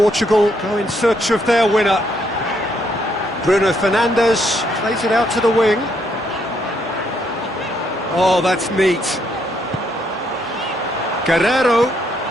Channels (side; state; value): both; normal; correlation 0.73